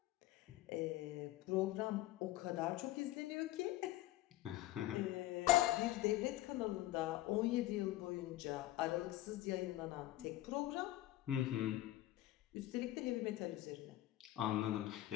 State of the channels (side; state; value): right; quieter; 15.4 dB